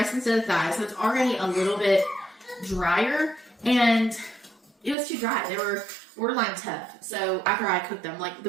instead of thighs, so it's already a little bit drier, and it was too dry. They were borderline tough. So after I cooked them, like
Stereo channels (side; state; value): left; drops out; at 5.0 s